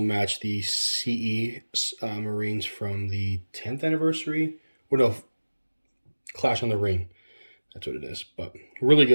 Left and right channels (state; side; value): inverted; both; correlation -1.00